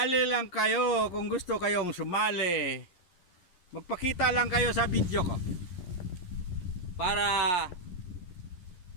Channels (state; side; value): late; right; 11 ms